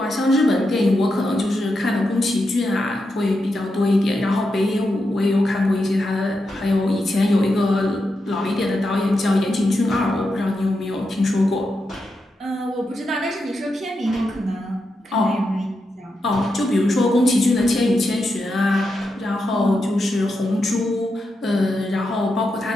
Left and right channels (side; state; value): both; normal; correlation 0.86